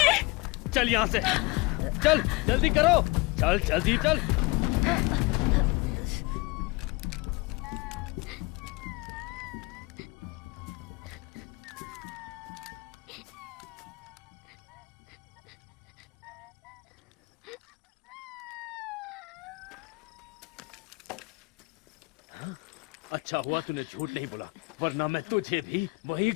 चल यहाँ से, चल जल्दी करो, चल जल्दी चल। अच्छा हुआ तूने झूठ नहीं बोला, वरना मैं तुझे भी वहीं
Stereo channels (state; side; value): quieter; right; 25.1 dB